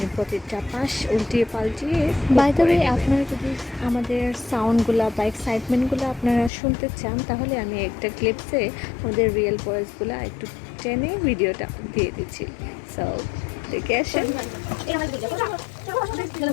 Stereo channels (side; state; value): right; drops out; at 6.5 s